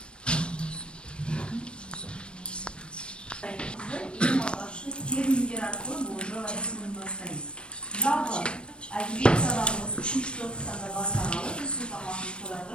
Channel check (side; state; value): right; late; 0.056 ms